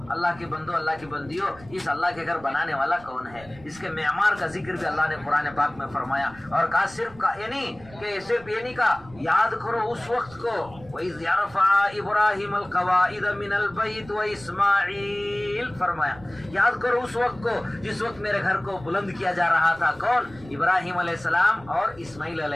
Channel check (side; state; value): right; noise; rumble, 21 dB below the sound